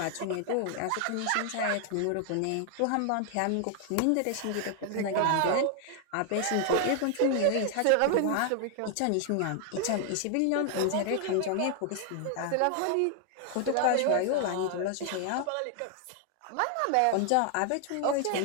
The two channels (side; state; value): both; different; correlation 0.00